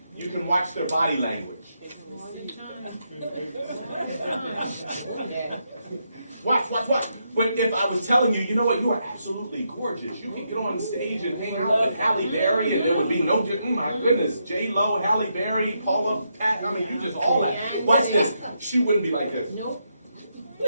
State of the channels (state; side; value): inverted; both; correlation -0.81